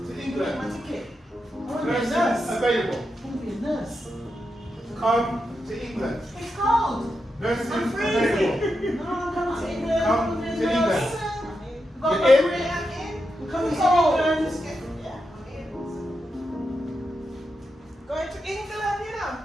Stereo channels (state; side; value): normal; both; correlation 0.87